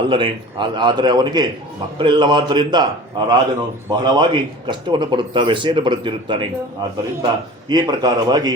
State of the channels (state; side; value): normal; both; correlation 0.40